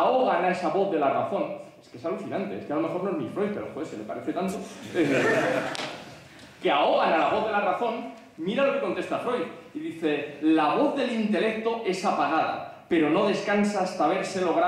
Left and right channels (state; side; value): identical; both; correlation 1.00